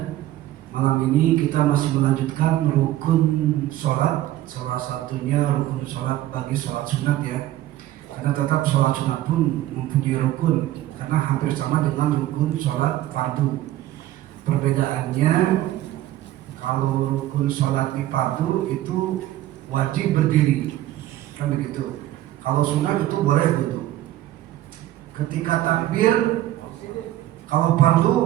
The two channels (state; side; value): quieter; left; 14.4 dB